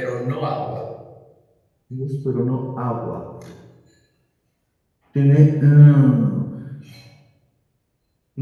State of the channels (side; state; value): both; identical; correlation 1.00